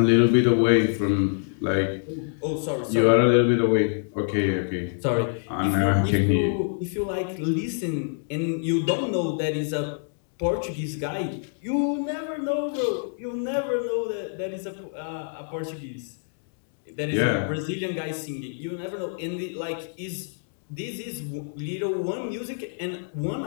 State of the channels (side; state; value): right; silent; digital silence